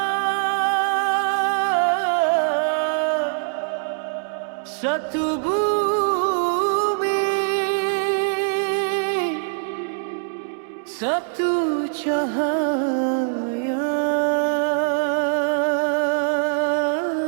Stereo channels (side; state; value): left; silent; 64 dB below the other